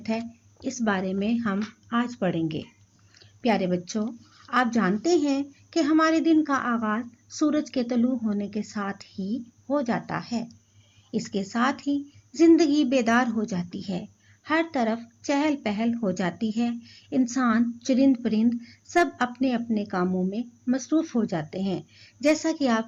ہے، اس بارے میں ہم آج پڑھیں گے۔ پیارے بچوں، آپ جانتے ہیں کہ ہمارے دن کا آغاز سورج کے طلوع ہونے کے ساتھ ہی ہو جاتا ہے۔ اس کے ساتھ ہی زندگی بیدار ہو جاتی ہے، ہر طرف چہل پہل ہو جاتی ہے، انسان، چرند پرند سب اپنے اپنے کاموں میں مصروف ہو جاتے ہیں، جیسا کہ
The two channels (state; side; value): identical; both; correlation 1.00